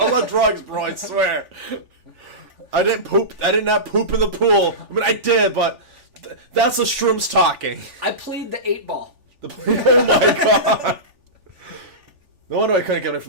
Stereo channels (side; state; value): left; late; 3.4 ms